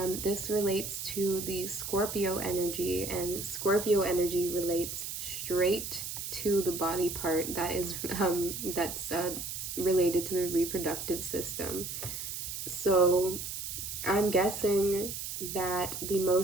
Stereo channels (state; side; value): noise; right; hiss, 6 dB below the sound